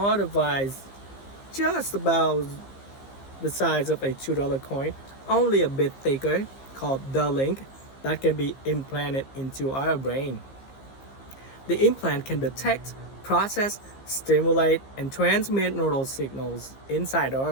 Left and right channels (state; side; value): late; right; 15 ms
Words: device just about the size of a $2 coin, only a bit thicker, called the link, that can be implanted into our brain. The implant can detect, process, stimulate, and transmit neural signals inside